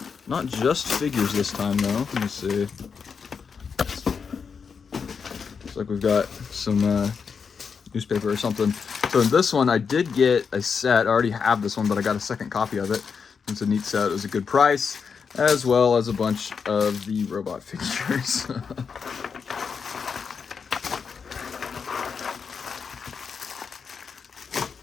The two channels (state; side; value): quieter; right; 6.0 dB